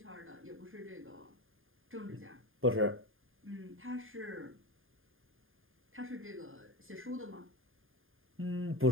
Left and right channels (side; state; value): left; late; 0.59 ms